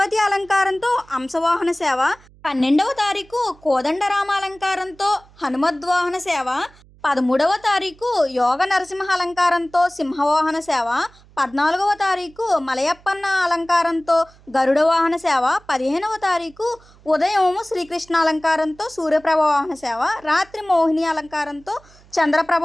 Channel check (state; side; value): noise; right; hum, 27 dB below the sound